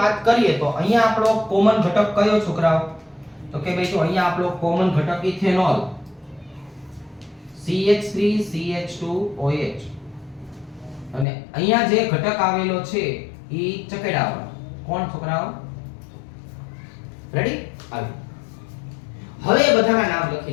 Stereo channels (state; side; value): drops out; right; at 11.2 s